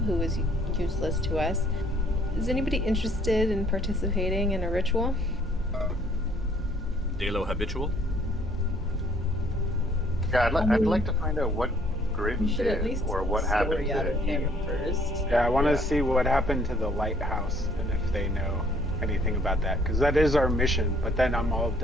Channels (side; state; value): both; normal; correlation 0.62